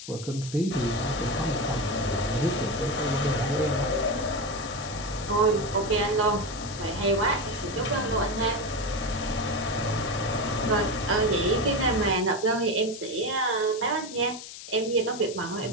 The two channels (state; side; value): noise; left; hiss, 12 dB below the sound